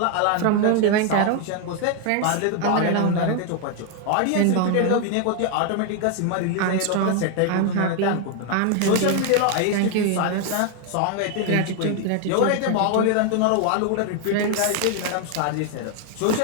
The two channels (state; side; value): different; both; correlation 0.00